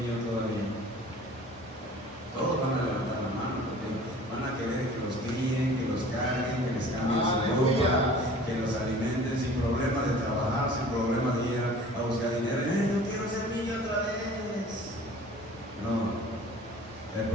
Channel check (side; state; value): both; normal; correlation 0.46